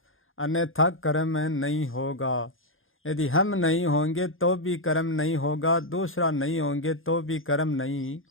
अन्यथा कर्म नहीं होगा। यदि हम नहीं होंगे तो भी कर्म नहीं होगा, दूसरा नहीं होंगे तो भी कर्म नहीं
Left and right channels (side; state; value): right; late; 0.59 ms